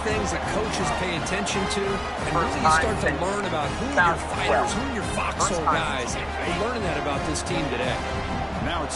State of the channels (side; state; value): both; identical; correlation 1.00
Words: things that coaches pay attention to, and really you start to learn about who are your fighters, who are your foxhole guys. We're learning that about this team today. Now a